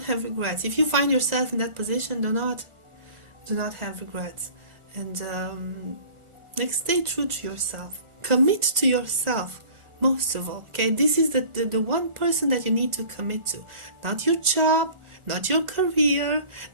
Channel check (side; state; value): left; late; 1.4 ms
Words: have regrets. If you find yourself in that position, do not have regrets. And like, stay true to yourself. Commit to yourself, most of all. Okay, this is the one person that you need to commit to. Not your job, not your career,